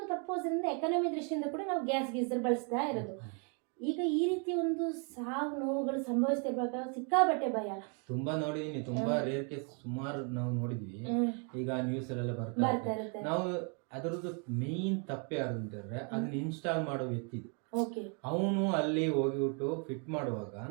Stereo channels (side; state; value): left; quieter; 37.8 dB